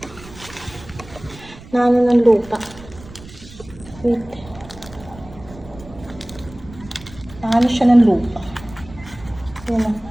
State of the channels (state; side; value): noise; right; rumble, 18 dB below the sound